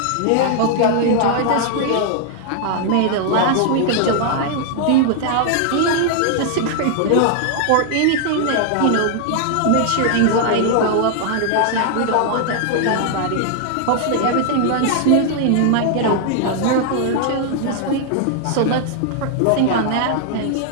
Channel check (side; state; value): both; different; correlation 0.00